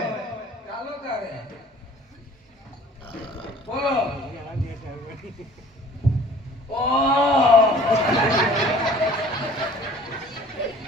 ચાલો તારે બોલો.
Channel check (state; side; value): normal; both; correlation 0.50